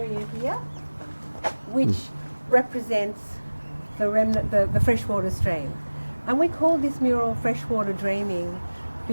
here, which represents the remnant, the freshwater stream. And we call this mural Freshwater Dreaming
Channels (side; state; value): both; inverted; correlation -1.00